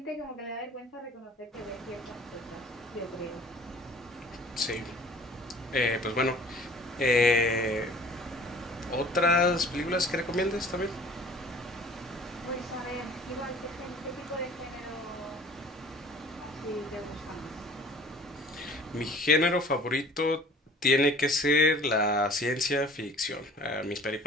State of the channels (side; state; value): both; normal; correlation 0.48